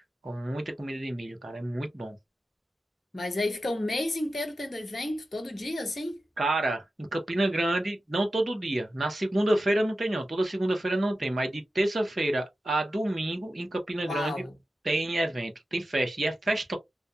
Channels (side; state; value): both; normal; correlation 0.93